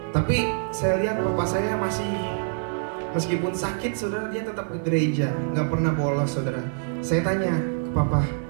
Tapi saya lihat papa saya masih, meskipun sakit saudara, dia tetap ke gereja, nggak pernah bolos, saudara. Saya tanya ke papa,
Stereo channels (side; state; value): left; silent; digital silence